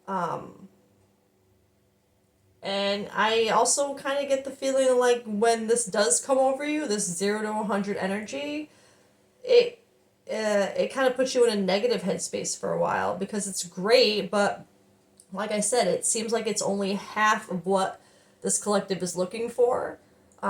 And I also kind of get the feeling like when this does come over you, this 0 to 100 energy, it it kind of puts you in a negative headspace for a while because it's great, but like I said, it seems like it's only half of what this collective is looking for.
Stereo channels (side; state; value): both; identical; correlation 1.00